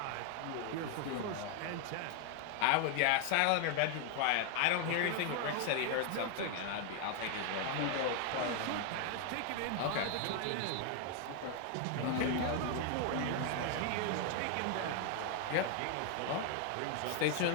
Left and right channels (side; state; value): both; different; correlation 0.01